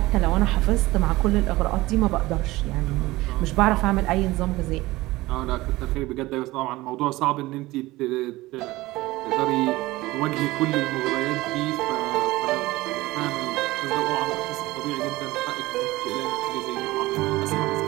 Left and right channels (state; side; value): quieter; left; 19.1 dB